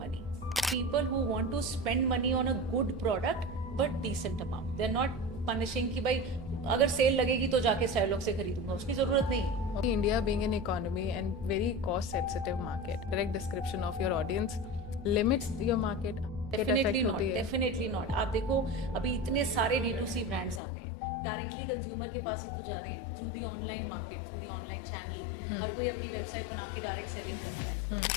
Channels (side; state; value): right; drops out; at 20.6 s